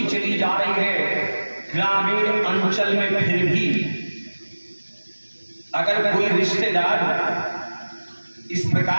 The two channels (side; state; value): both; inverted; correlation -1.00